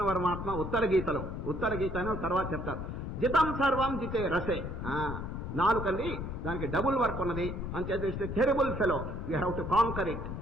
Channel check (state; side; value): noise; left; rumble, 5 dB below the sound